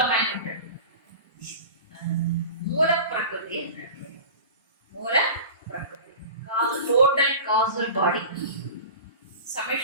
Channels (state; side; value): inverted; both; correlation -0.36